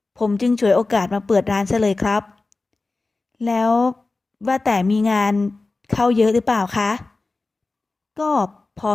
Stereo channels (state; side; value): quieter; right; 3.5 dB